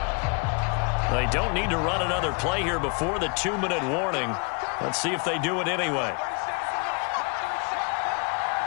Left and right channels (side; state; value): right; quieter; 34.4 dB